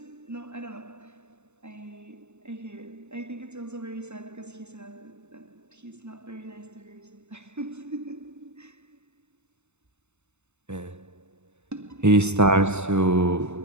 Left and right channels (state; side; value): late; left; 0.82 ms